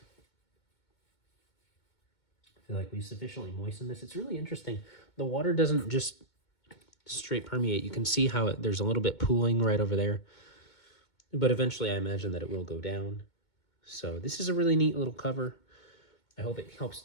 we sufficiently moisten this. It's really interesting. The water doesn't just straight permeate. You can see how there's a little bit pooling right over there. But eventually I imagine that it will go down. So this is a really neat little cover. I hope it helps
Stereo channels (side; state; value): right; late; 2.2 ms